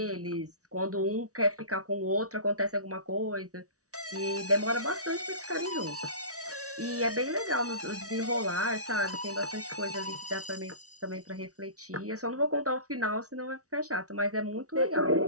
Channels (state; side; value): late; left; 0.67 ms